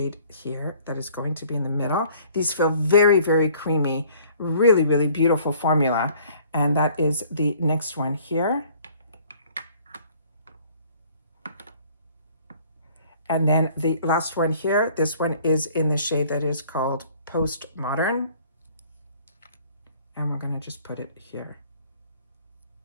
here that is going to be in the middle. These feel very, very creamy, really, really beautiful formula. And that is the next one here. And then the last one here, this one is in the shade that is called Postmodern. And we're going to just put it here.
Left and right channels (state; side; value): inverted; both; correlation -0.55